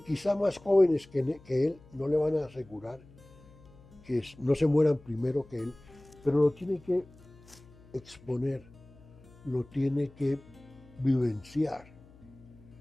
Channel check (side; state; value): left; noise; hum, 24 dB below the sound